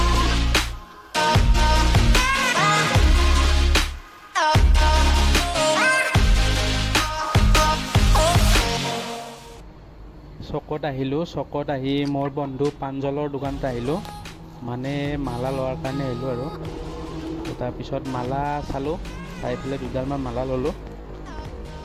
চকত আহি মোৰ বন্ধু পাঞ্জলৰ দোকানত আহিলোঁ, মানে মালা লোৱাৰ কাৰণে আহিলোঁ আৰু তাৰপিছত মালা চালোঁ, চাই পেলাই দুডালমান মালা ল'লোঁ।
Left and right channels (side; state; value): both; identical; correlation 1.00